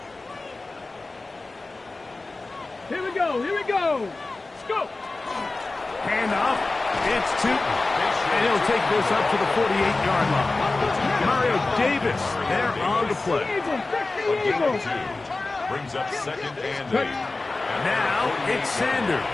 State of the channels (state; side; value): quieter; right; 3.3 dB